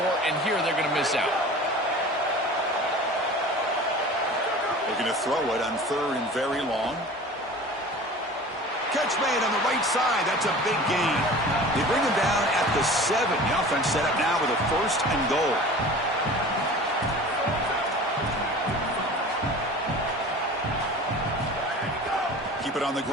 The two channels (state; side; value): normal; both; correlation 0.40